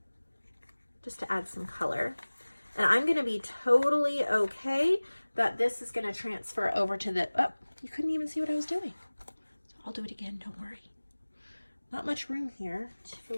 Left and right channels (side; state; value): both; inverted; correlation -1.00